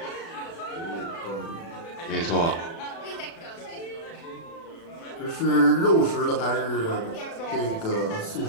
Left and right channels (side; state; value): right; late; 36 ms